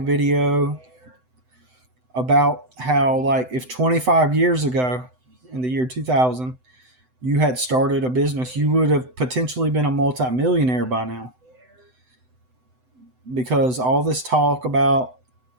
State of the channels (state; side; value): late; left; 7.9 ms